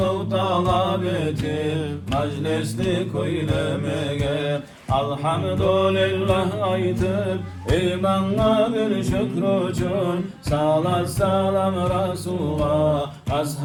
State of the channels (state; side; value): identical; both; correlation 1.00